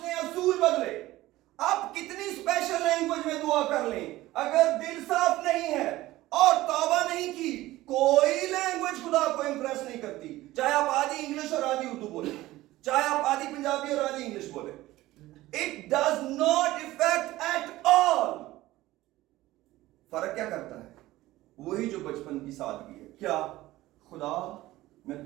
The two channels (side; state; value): left; quieter; 17.0 dB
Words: असूल बदले। आप कितनी स्पेशल लैंग्वेज में दुआ कर लें, अगर दिल साफ नहीं है और तौबा नहीं की, कोई लैंग्वेज खुदा को इंप्रेस नहीं करती। चाहे आप आधी इंग्लिश और आधी उर्दू बोले, चाहे आप आधी पंजाबी और आधी इंग्लिश बोले, it does not effect at all. फर्क क्या करता है? वही जो बचपन की सादगी है। क्या? खुदा मैं